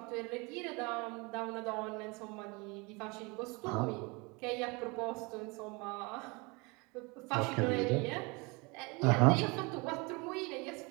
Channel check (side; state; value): left; quieter; 27.7 dB